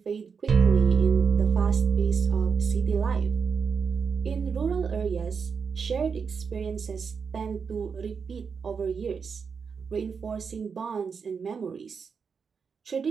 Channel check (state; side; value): quieter; left; 5.9 dB